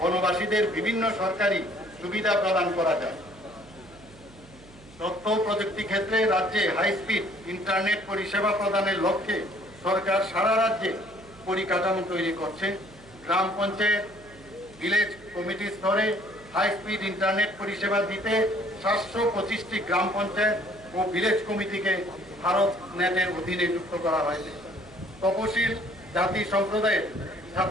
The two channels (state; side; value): noise; right; hum, 23 dB below the sound